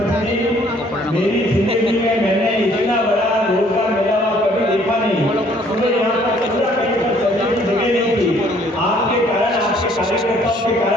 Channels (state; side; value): normal; both; correlation 0.61